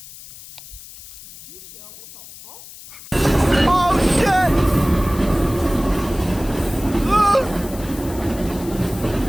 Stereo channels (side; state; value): left; noise; hiss, 17 dB below the sound